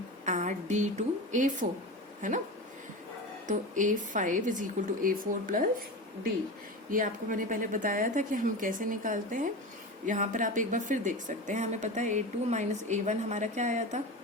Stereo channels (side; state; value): both; normal; correlation 0.26